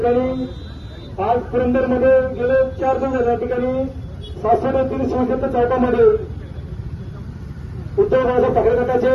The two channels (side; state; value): both; identical; correlation 1.00